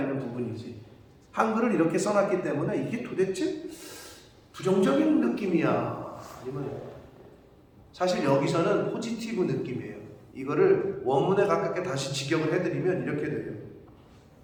부분이지. 한글을 이렇게 써놨기 때문에 이게 도대체 부정적인 느낌이야? 아니면 사실 여기서는 포지티브 느낌이에요. 이거를 원문에 가깝게 다시 직역을 해드리면 이렇게 돼요.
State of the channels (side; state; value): both; identical; correlation 1.00